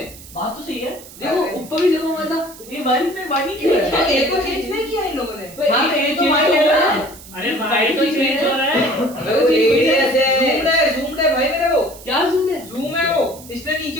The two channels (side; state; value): right; noise; hiss, 18 dB below the sound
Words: बात तो सही है। देखो ऊपर भी 0.1 था, ये वन में वन ही क्यों है? ए को चेंज नहीं किया इन लोगों ने। हाँ तो ये तो वन है ना। अरे भाई तो चेंज हो रहा है। zoomed है भाई मेरे को। क्या जूम है? जूम है वो, इसलिए नीचे